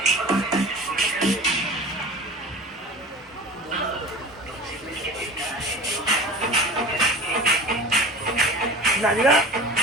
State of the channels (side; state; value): both; normal; correlation 0.37